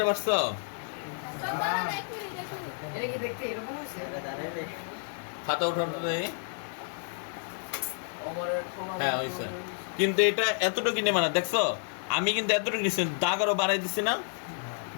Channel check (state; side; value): silent; right; 58 dB below the other